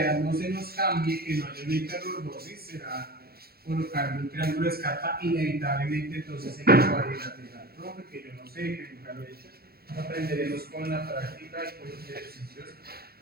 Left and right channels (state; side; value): late; left; 0.45 ms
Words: no se nos cambie, que no haya una hiperlordosis, será colocar un triángulo de Scarpa inevitablemente entonces en el cuadrilateral, ¿no? Porque yo no sé, que nunca lo he hecho. Aprenderemos con la práctica y con los ejercicios